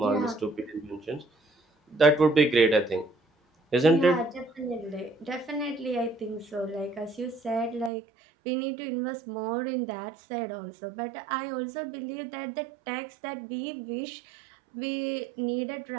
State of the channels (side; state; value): left; drops out; at 7.9 s